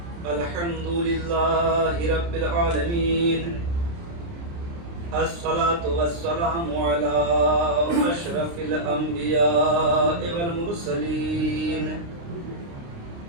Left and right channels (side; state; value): left; late; 29 ms